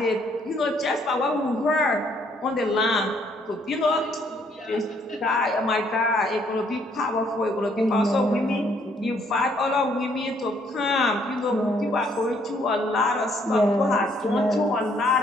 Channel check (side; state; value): both; normal; correlation 0.67